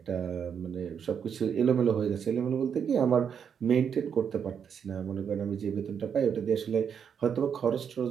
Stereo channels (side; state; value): left; quieter; 7.5 dB